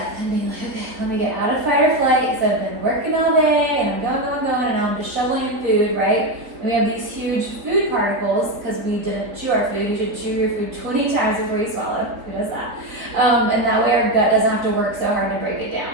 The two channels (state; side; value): late; left; 3.8 ms